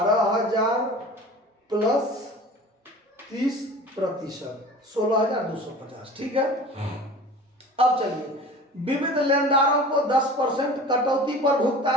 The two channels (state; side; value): normal; both; correlation 0.40